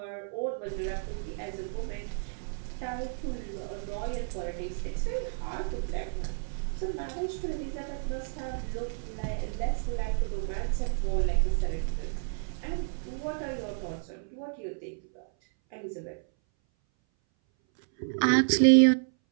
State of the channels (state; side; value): silent; left; 57 dB below the other